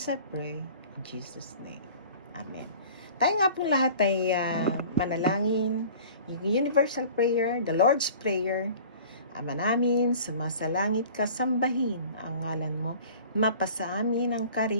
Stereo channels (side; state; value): both; inverted; correlation -0.45